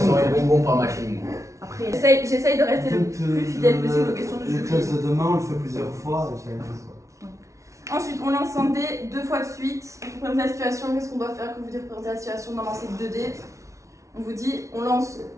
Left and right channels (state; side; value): late; left; 0.14 ms